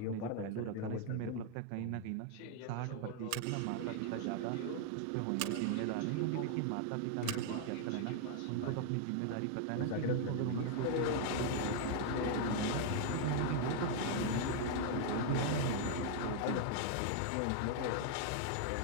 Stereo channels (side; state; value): both; different; correlation 0.00